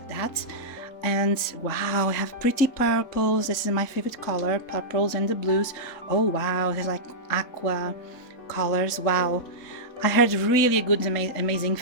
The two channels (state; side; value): late; right; 4.3 ms